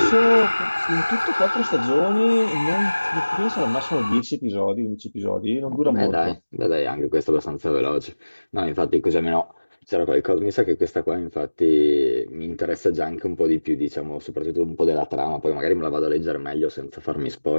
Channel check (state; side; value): inverted; both; correlation -1.00